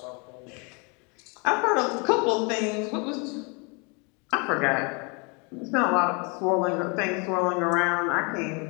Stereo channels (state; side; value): quieter; right; 32.2 dB